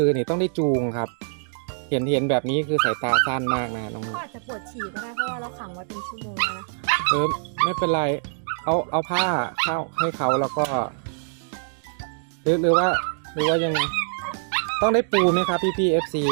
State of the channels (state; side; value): silent; left; digital silence